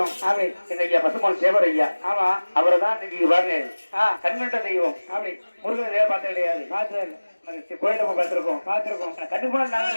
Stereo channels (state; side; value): inverted; both; correlation -1.00